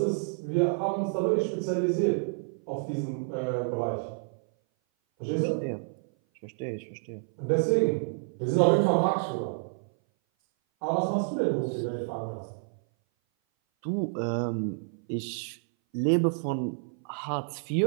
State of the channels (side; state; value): left; silent; 57 dB below the other